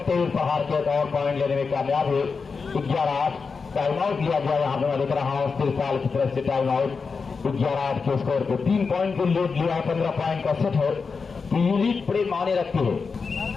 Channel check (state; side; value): quieter; right; 5.0 dB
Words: तेज प्रहार के और पॉइंट लेने में कामयाब हुए। 11-8 टाइम आउट लिया गया यहाँ पे, मैं देख रहा हूँ सिरसाल की तरफ से टाइम आउट। 11-8 के स्कोर पे 3 पॉइंट की लीड लिया, 15 पॉइंट का सेट है तो ये लीड बड़े माने रखती है।